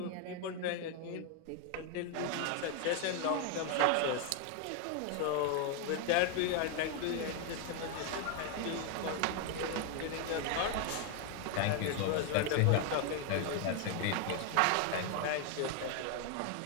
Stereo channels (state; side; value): different; both; correlation 0.01